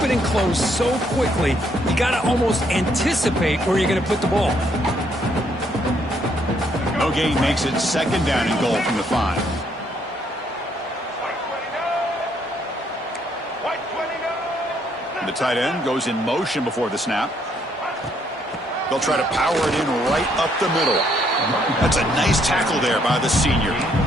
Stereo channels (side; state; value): both; normal; correlation 0.70